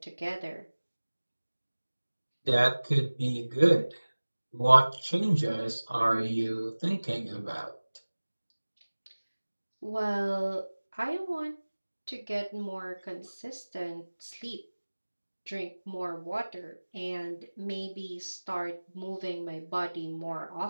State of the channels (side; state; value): both; inverted; correlation -1.00